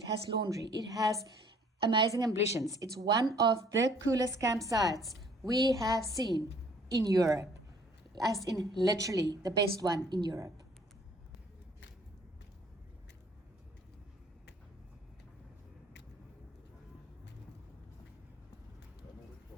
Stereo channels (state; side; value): normal; both; correlation 0.58